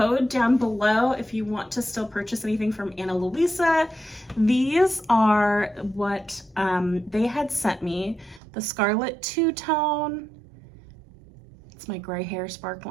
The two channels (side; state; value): left; drops out; at 8.4 s